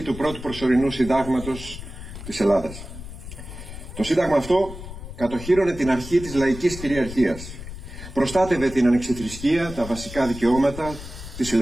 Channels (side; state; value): left; noise; rumble, 11 dB below the sound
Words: του πρώτου προσωρινού συντάγματος της Ελλάδας. Το σύνταγμα αυτό κατοχύρωνε την αρχή της λαϊκής κυριαρχίας. Προστάτευε την ανεξιθρησκεία, τα βασικά δικαιώματα, τις